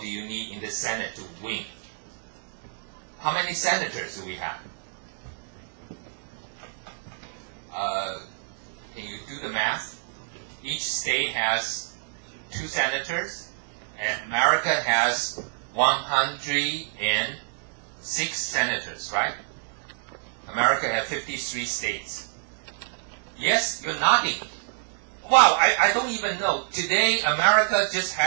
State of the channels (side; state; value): left; silent; 60 dB below the other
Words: do you need in the Senate to win? How many senators do we have? Can you do the math? Each state has 2 senators, and America has 106 senators, right? America has 53 states. Yes, you're nodding. Wow, I don't even know. Today, America just